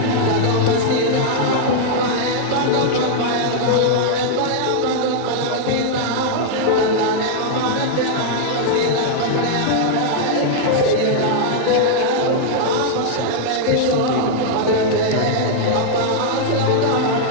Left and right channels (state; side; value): different; both; correlation -0.01